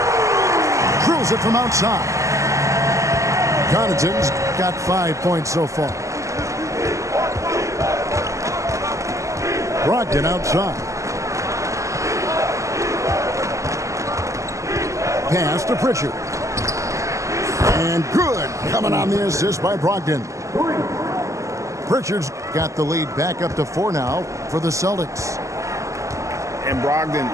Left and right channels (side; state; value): left; late; 0.15 ms